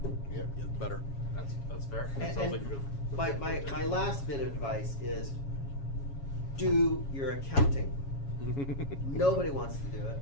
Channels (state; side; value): late; right; 7.2 ms